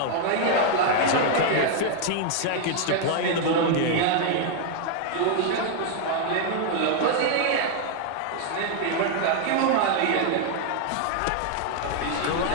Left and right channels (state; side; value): different; both; correlation 0.00